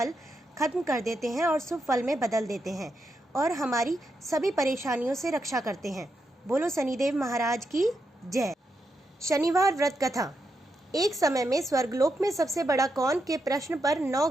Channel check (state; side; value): normal; both; correlation 0.84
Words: खत्म कर देते हैं और शुभ फल में बदल देते हैं और हमारी सभी परेशानियों से रक्षा करते हैं। बोलो शनिदेव महाराज की जय। शनिवार व्रत कथा। एक समय में स्वर्गलोक में सबसे बड़ा कौन के प्रश्न पर 9